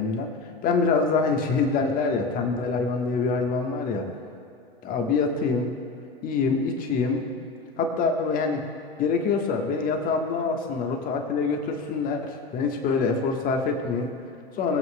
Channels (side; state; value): right; quieter; 4.1 dB